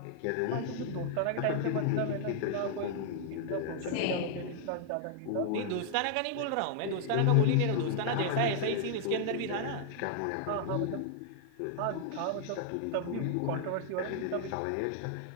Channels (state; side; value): different; both; correlation -0.01